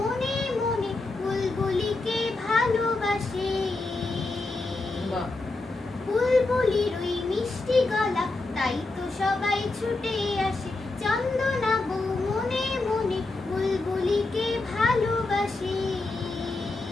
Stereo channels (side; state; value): right; quieter; 3.2 dB